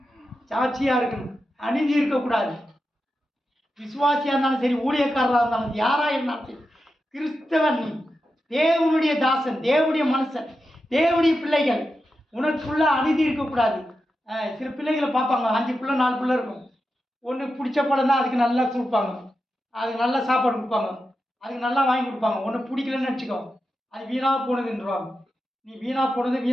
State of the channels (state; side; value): normal; both; correlation 0.89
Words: சாட்சியாக இருக்கணும், அநீதி இருக்கக்கூடாது. விசுவாசியாக இருந்தாலும் சரி, ஊழியக்காரராக இருந்தாலும் யாராக இருந்தாலும் சரி, கிறிஸ்தவன் நீ, தேவனுடைய தாசன், தேவனுடைய மனுஷன், தேவனுடைய பிள்ளைகள், உனக்குள்ள அநீதி இருக்கக்கூடாது. சில பிள்ளைகளை பார்ப்பாங்க, 5 பிள்ளை 4 பிள்ளை இருக்கும். ஒன்று பிடிச்ச படம் தான் அதுக்கு நல்லா கொடுப்பாங்க, அதுக்கு நல்லா சாப்பாடு கொடுப்பாங்க, அதுக்கு நல்லா வாங்கி கொடுப்பாங்க. ஒன்று பிடிக்கலன்னு நினச்சிக்கோ, அது வீணாக போனதுன்றாங்க. நீ வீணாக போனது